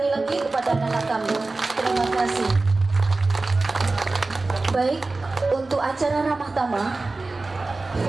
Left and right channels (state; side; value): quieter; left; 3.4 dB